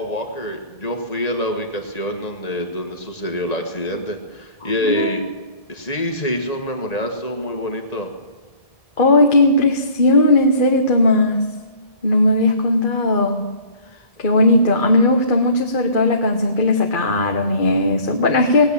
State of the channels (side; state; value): right; late; 1.9 ms